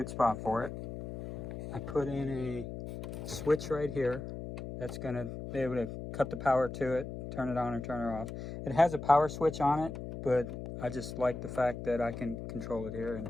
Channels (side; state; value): left; noise; hum, 8 dB below the sound